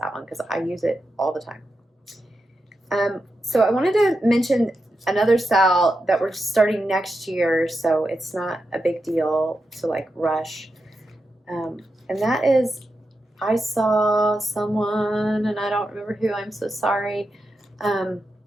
that one, because I use it all the time. So I wanted to mention another SAL that we're starting next year, so it's not a big deal to like rush. And that is, I saw someone, and I don't remember who, I'm so sorry, on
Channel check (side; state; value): both; normal; correlation 0.88